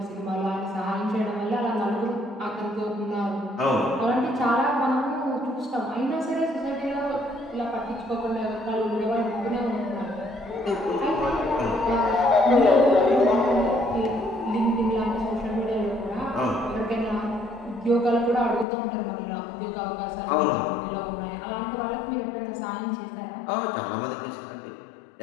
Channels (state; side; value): drops out; right; at 18.7 s